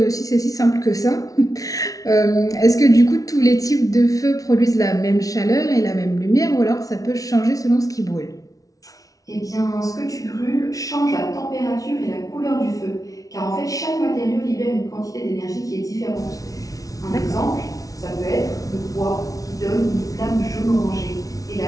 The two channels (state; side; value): late; right; 0.17 ms